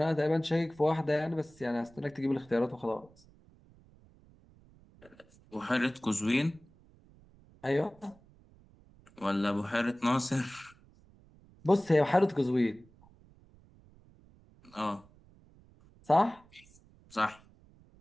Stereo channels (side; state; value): right; noise; rumble, 27 dB below the sound